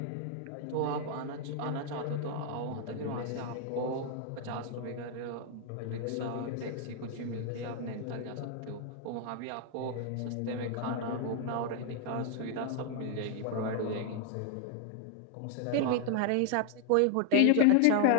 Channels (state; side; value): different; both; correlation 0.00